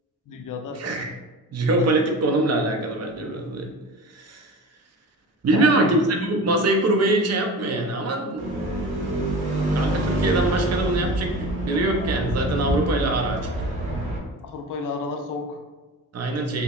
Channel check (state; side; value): normal; both; correlation 0.34